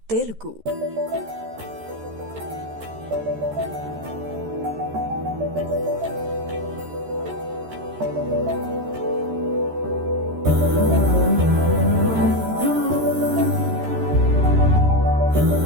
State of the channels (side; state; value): left; late; 13 ms